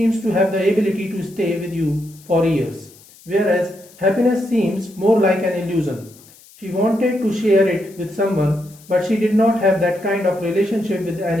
to have the ability to stay with you for years, whereas happiness seems more like an illusion. She wanted to share it with someone, but she did not have that kind of relationship with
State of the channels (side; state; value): left; noise; hiss, 24 dB below the sound